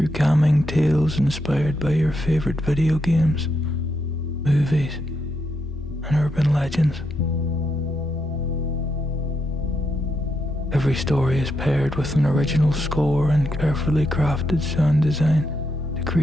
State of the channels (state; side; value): normal; both; correlation 0.81